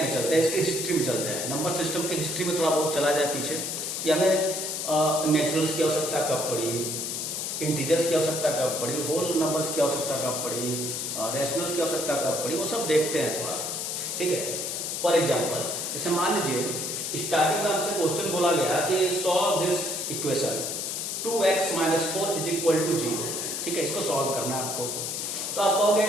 में चलते हैं, इसकी हिस्ट्री में चलते हैं। नंबर सिस्टम की हिस्ट्री में थोड़ा बहुत चला जाए पीछे कि हमें नेचुरल्स की आवश्यकता कब पड़ी, इंटीजर्स की आवश्यकता कब पड़ी, होल नंबर्स की आवश्यकता कब पड़ी, रैशनल्स की आवश्यकता कब पड़ी, वो सब देखते हैं थोड़ा, ठीक है। फॉर एग्जाम्पल, जैसे मान लीजिए स्टार्टिंग में हमसे क्वेश्चन बोला गया कि सॉल्व दिस इक्वेशन 2x - 4 = 0, ठीक है, इसको सॉल्व करना है आपको। तो आप कहोगे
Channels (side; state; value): left; noise; hiss, 3 dB below the sound